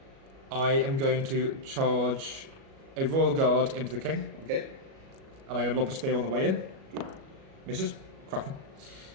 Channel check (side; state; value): left; late; 37 ms